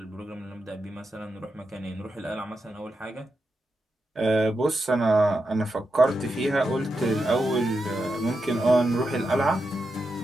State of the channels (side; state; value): both; normal; correlation 0.87